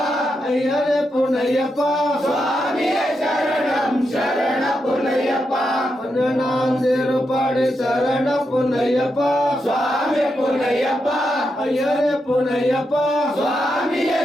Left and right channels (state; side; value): normal; both; correlation 0.84